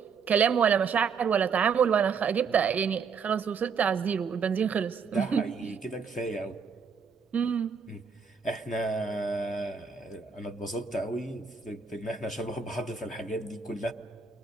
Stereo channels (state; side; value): quieter; left; 5.9 dB